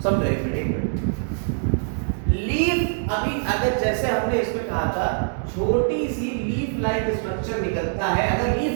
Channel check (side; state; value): left; silent; digital silence